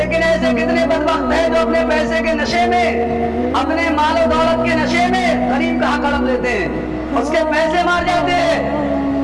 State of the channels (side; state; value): both; identical; correlation 1.00